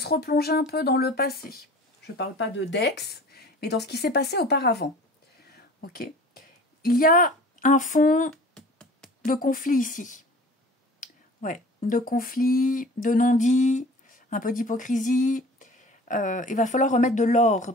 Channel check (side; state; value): both; normal; correlation 0.44